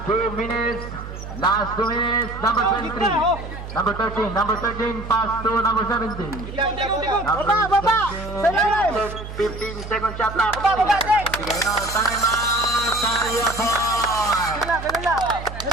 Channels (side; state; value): right; noise; hum, 10 dB below the sound